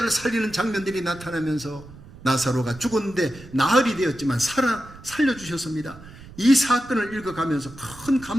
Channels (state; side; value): noise; right; rumble, 19 dB below the sound